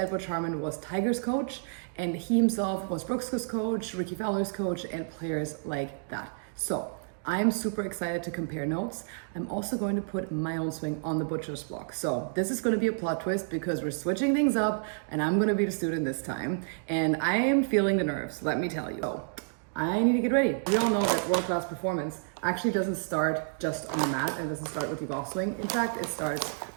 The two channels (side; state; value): left; silent; digital silence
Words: Butch Harmon, was Tiger's coach, and he himself was Brooks' coach, Ricky Fowler's coach, and players like that. So I'm super excited to compare notes. I'm also going to put my own swing on the Butcher's block. So this is going to be a plot twist because we're switching things up and I'm going to be the student this time. And I am feeling the nerves, let me tell you. So I need to get ready. We all know that world-class performance actually doesn't start just on the mat and doesn't start with your golf swing. In fact, it starts